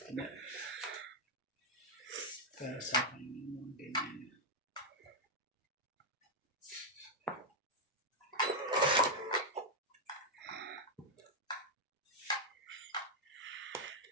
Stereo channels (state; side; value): normal; both; correlation -0.01